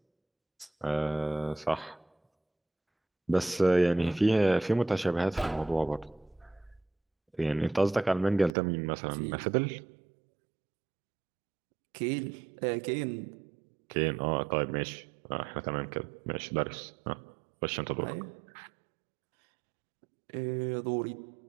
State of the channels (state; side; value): drops out; left; at 8.5 s